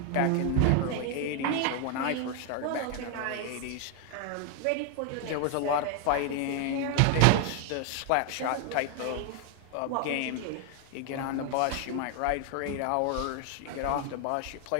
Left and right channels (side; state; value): both; different; correlation 0.01